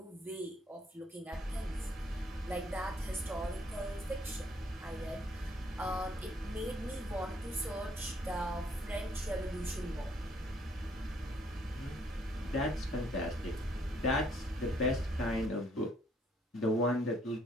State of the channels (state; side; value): normal; both; correlation 0.66